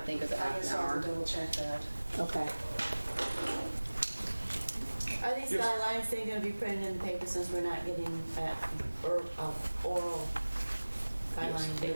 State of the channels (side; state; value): both; inverted; correlation -1.00